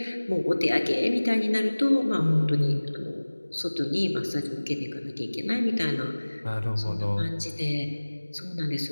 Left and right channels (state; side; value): inverted; both; correlation -1.00